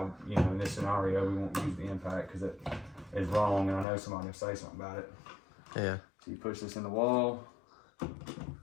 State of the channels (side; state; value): right; drops out; at 3.9 s